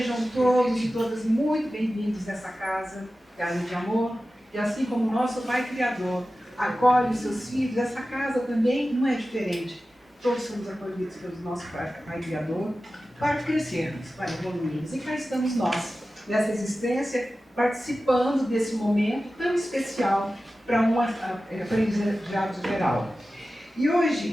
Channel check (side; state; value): both; normal; correlation 0.95